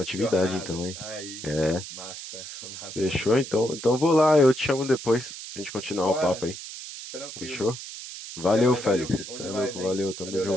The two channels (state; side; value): noise; right; hiss, 11 dB below the sound